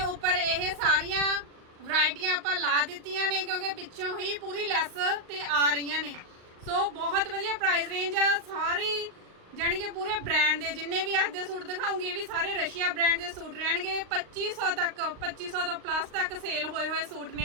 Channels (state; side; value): late; left; 38 ms